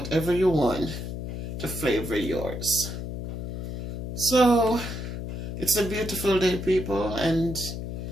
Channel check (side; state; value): left; noise; hum, 5 dB below the sound